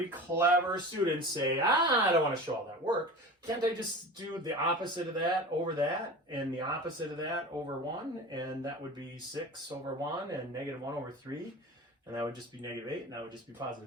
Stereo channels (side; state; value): both; normal; correlation 0.34